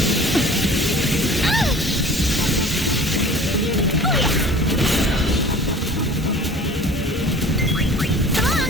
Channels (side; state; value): both; normal; correlation 0.45